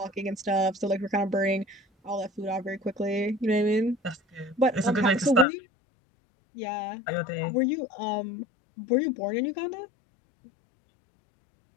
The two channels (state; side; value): drops out; right; at 5.5 s